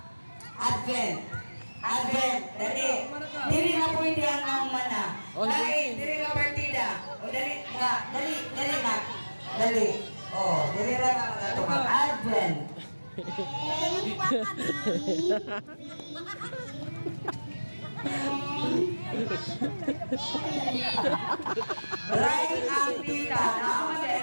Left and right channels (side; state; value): both; inverted; correlation -1.00